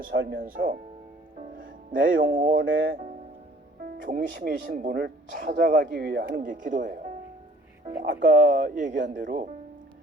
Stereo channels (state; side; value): normal; both; correlation 0.54